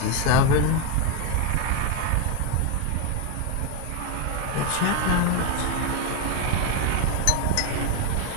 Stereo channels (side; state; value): both; different; correlation 0.01